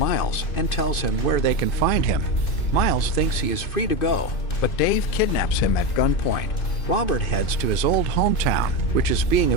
and tells him where they can find him. Miles thinks he is free to go, but Dave kidnaps him at gunpoint. Robert heads to his old hometown, which is being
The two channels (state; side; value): late; right; 2.5 ms